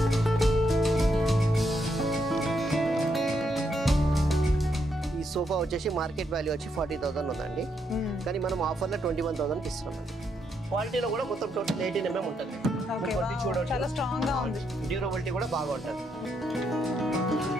ఈ సోఫా వచ్చేసి మార్కెట్ వాల్యూ వచ్చి 40,000 ఉందండి, కానీ మనం ఆఫర్లో 21,000కి ఇస్తున్నాం. క్వాలిటీలో కూడా మొత్తం టోటల్ 18 mm ఉంటుంది. చాలా స్ట్రాంగ్ గా ఉంది, డ్యూరబిలిటీ కూడా బాగా ఉంటుంది.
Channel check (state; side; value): normal; both; correlation 0.78